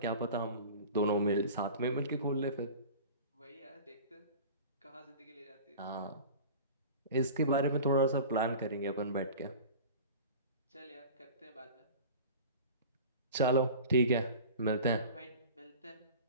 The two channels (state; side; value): inverted; both; correlation -0.38